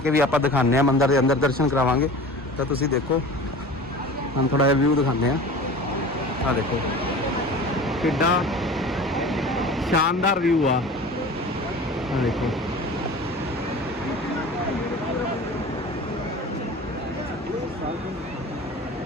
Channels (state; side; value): normal; both; correlation 0.38